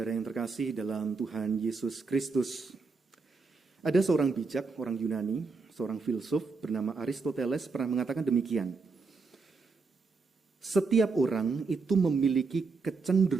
yang terkasih dalam Tuhan Yesus Kristus. Ada seorang bijak, orang Yunani, seorang filsuf bernama Aristoteles pernah mengatakan demikian. Setiap orang itu memiliki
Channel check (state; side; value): quieter; left; 4.3 dB